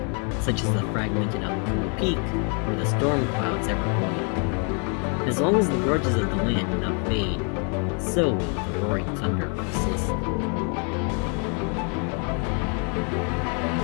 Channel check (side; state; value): right; quieter; 38.5 dB